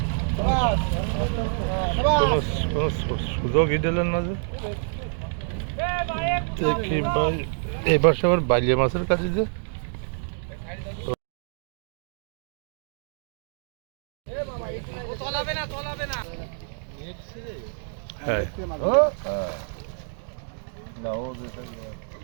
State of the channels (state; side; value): silent; left; digital silence